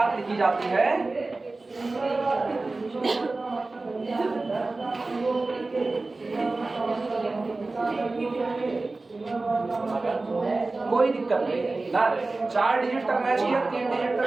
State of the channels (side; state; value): left; quieter; 3.3 dB